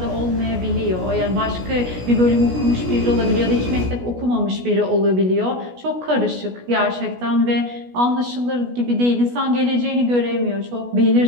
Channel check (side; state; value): left; late; 16 ms